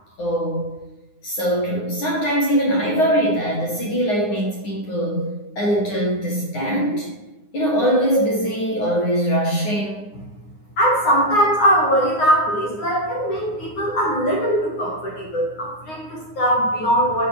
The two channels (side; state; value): right; late; 9.6 ms